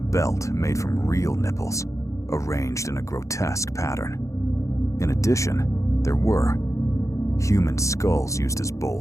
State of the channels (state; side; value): late; right; 0.15 ms